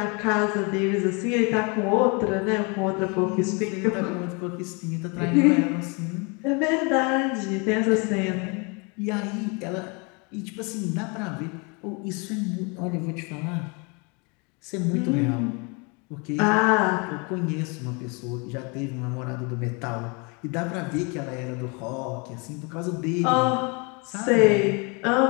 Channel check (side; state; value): right; quieter; 31.6 dB